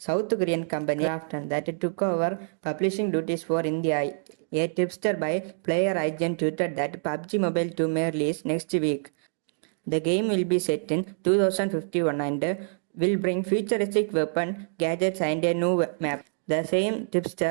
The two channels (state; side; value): silent; left; digital silence